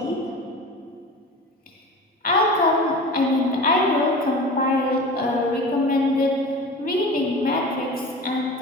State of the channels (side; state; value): both; normal; correlation 0.35